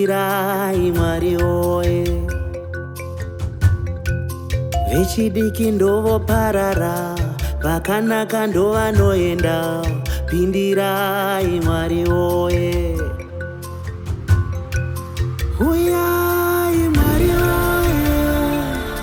Mwari woye. Vechidiki ndovoparara, vakanaka ndovanoenda, pindirai Mwari woye. Uyai Mwari woye.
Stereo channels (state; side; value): identical; both; correlation 1.00